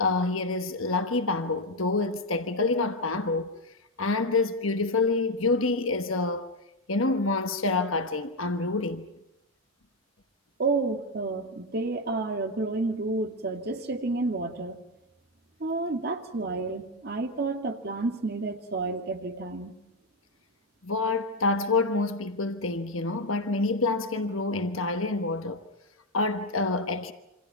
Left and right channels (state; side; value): normal; both; correlation 0.06